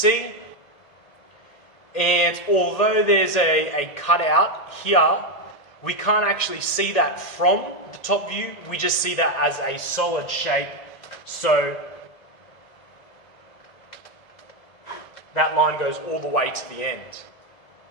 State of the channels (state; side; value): late; right; 1.9 ms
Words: And although there's a cutout here, we can't actually see that from the top view. We just see that as a solid shape. So that line goes all the way to the end.